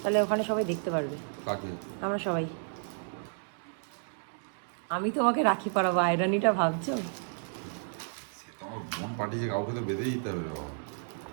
তাহলে ওখানে সবাই দেখতে পারবে। আমরা সবাই, আমি তোমাকে রাখি পরাবো, আয়রানিটা ভাবছো? পাঠিয়েছে, কাউকে তো বেঁধে দিতে হবে।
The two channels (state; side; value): silent; left; digital silence